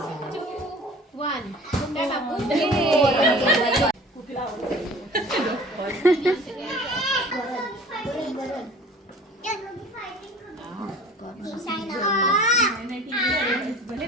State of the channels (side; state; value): both; normal; correlation 0.44